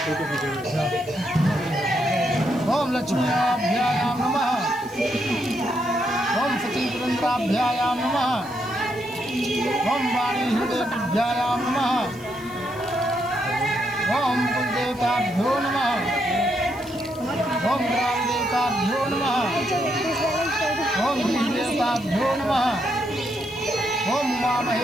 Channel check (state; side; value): noise; left; hiss, 23 dB below the sound